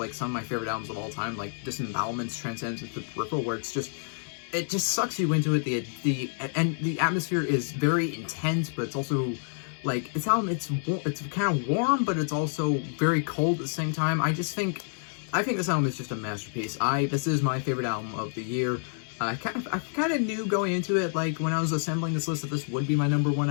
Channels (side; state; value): right; silent; digital silence